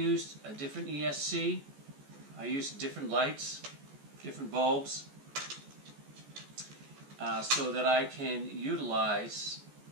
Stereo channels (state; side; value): late; left; 14 ms